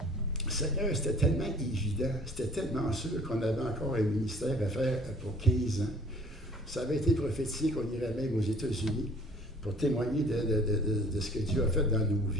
Seigneur, c'était tellement évident, c'était tellement sûr qu'on avait encore un ministère à faire pour 15 ans. Ça avait été prophétisé qu'on irait même aux États-Unis pour témoigner de ce que Dieu a fait dans nos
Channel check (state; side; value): normal; both; correlation 0.54